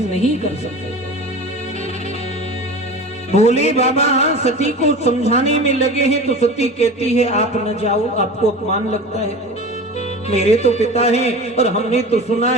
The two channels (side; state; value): both; normal; correlation 0.34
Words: नहीं कर सकते। भोले बाबा सती को समझाने में लगे हैं तो सती कहती है आप न जाओ, आपको अपमान लगता है। मेरे तो पिता हैं और हमने तो सुना